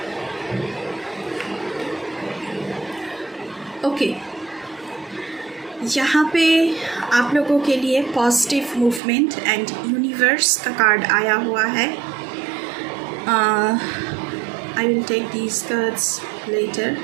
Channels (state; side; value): drops out; left; at 9.0 s